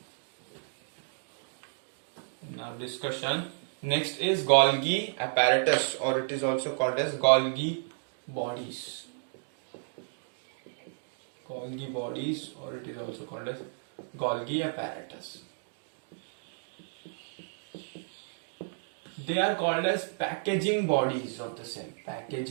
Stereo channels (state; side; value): silent; left; digital silence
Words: in our discussion, next is Golgi apparatus, or it is also called as Golgi bodies. Or it is also called as Golgi apparatus. They are called as packaging bodies of the cell.